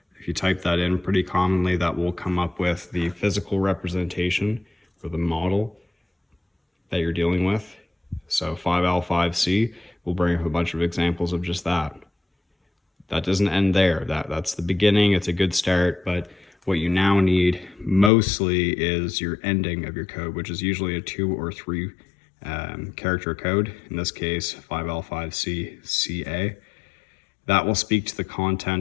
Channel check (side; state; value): right; drops out; at 18.1 s